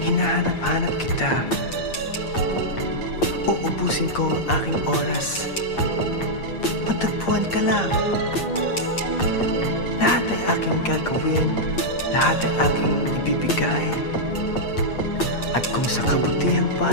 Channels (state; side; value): late; right; 8.6 ms